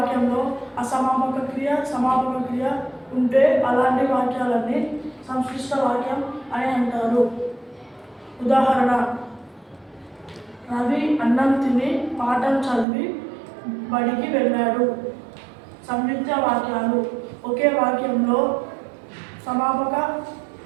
అసమాపక క్రియ, సమాపక క్రియ ఉంటే అలాంటి వాక్యాలన్నీ సంక్షిప్త వాక్యం అని అంటారు. ఉదాహరణ: రవి అన్నం తిని పాఠం చదివి బడికి వెళ్ళాడు. సంయుక్త వాక్యాలు. ఒకే వాక్యంలో సమాపక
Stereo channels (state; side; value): drops out; left; at 12.9 s